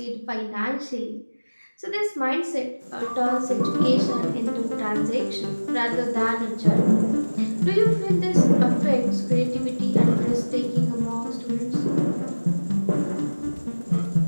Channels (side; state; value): both; inverted; correlation -1.00